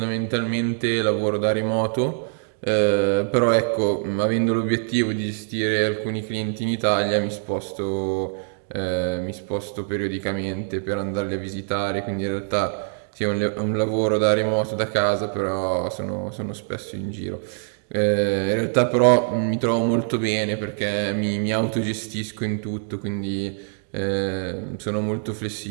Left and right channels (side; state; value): left; silent; digital silence